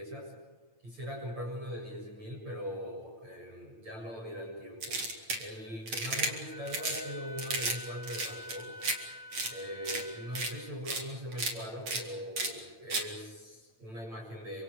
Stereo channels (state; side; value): late; left; 8.9 ms